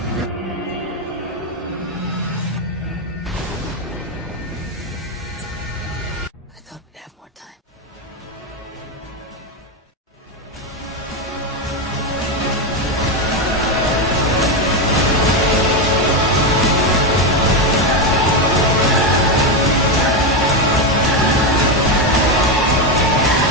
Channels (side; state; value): both; normal; correlation 0.09